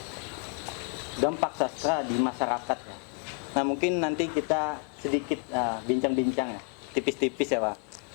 dampak sastra di masyarakat. Nah, mungkin nanti kita sedikit bincang-bincang ya, tipis-tipis ya Pak,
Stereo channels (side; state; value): right; quieter; 37.9 dB